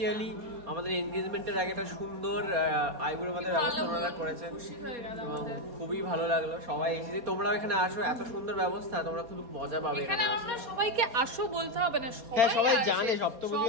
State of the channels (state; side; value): late; left; 4.2 ms